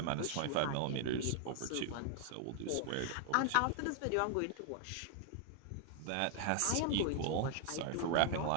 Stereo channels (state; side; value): different; both; correlation 0.00